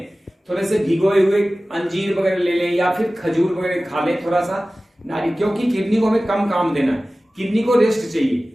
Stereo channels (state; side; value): normal; both; correlation 0.97